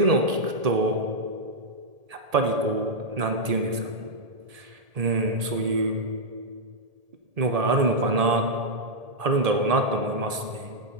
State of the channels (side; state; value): left; late; 1.8 ms